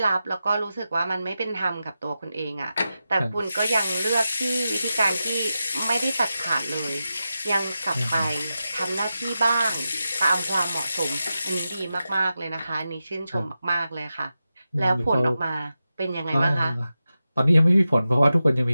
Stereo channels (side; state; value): both; inverted; correlation -0.91